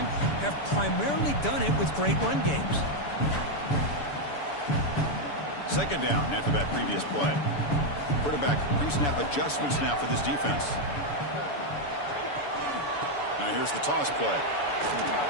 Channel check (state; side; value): late; right; 7.0 ms